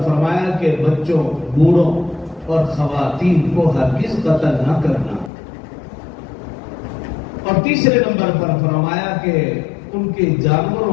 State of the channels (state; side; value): drops out; right; at 5.3 s